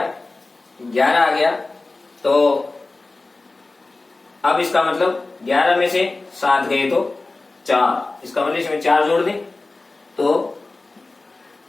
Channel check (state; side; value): quieter; right; 3.3 dB